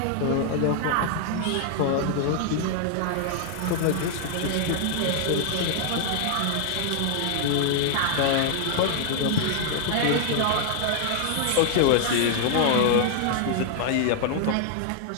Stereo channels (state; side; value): different; both; correlation -0.01